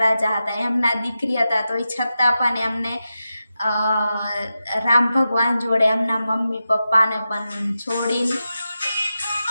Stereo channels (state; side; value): inverted; both; correlation -0.91